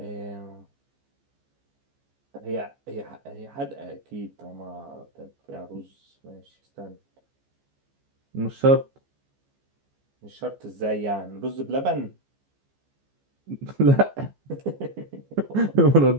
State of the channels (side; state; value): left; late; 14 ms